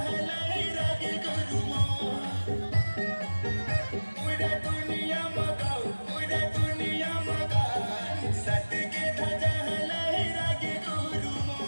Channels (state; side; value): inverted; both; correlation -1.00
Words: हलाई रागे गुरुमो पूरा दुनिया मका सत के ध्वजा हलाई रागे गुरुमो